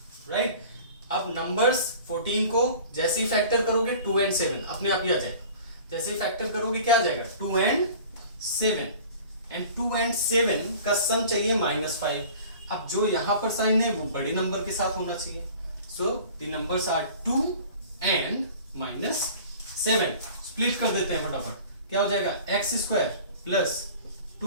राइट। अब नंबर्स 14 को जैसे ही फैक्टर करोगे 2 and 7 अपने आप ही आ जाएगा। जैसे ही फैक्टर करोगे क्या आ जाएगा, 2 and 7, एंड 2 and 7 का सम चाहिए -5। अब जो यहां पर साइन है वो बड़े नंबर के साथ होना चाहिए, so the numbers are 2 and -7। Split कर देते हैं फटाफट, क्या हो जाएगा, x² plus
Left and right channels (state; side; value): inverted; both; correlation -0.44